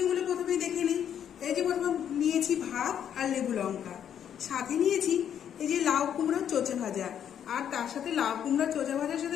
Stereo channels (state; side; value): quieter; right; 9.2 dB